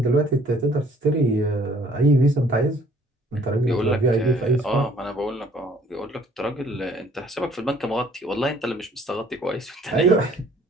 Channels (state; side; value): normal; both; correlation 0.58